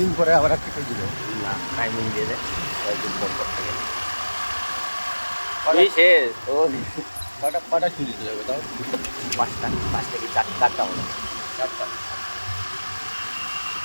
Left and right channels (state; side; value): inverted; both; correlation -1.00